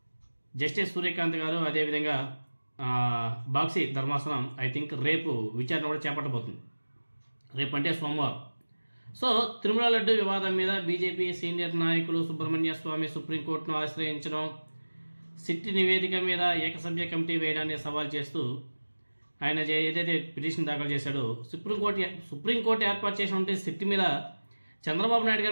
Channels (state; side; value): inverted; both; correlation -1.00